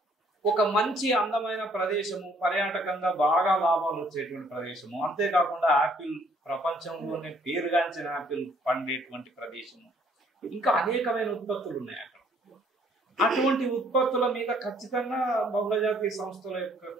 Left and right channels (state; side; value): normal; both; correlation 0.63